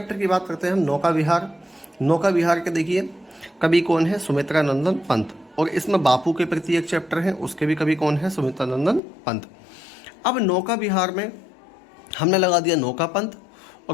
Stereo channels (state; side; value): drops out; right; at 9.0 s